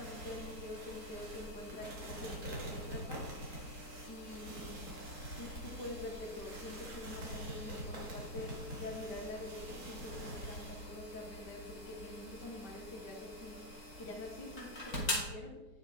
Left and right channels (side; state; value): right; late; 4.5 ms